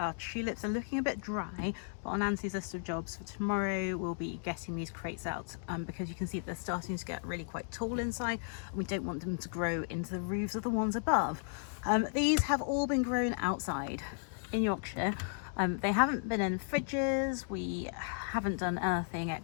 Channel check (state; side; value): silent; right; digital silence